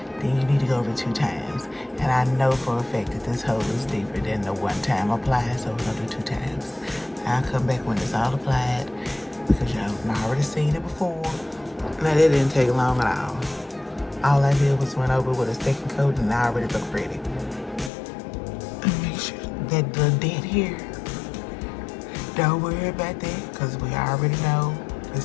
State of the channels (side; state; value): right; drops out; at 17.9 s